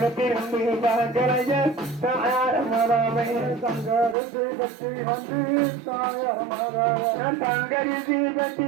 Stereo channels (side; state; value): left; drops out; at 4.2 s